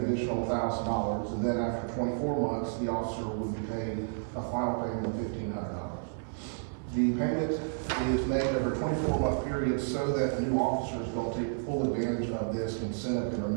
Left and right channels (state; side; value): silent; left; 57 dB below the other